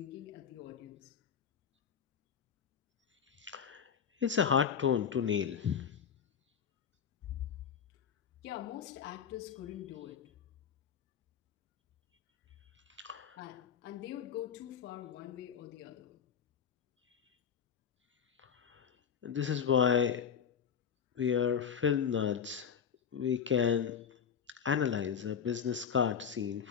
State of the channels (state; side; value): quieter; right; 7.5 dB